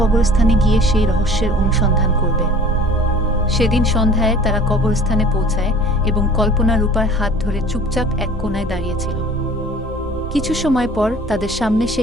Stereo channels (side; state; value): both; normal; correlation 0.46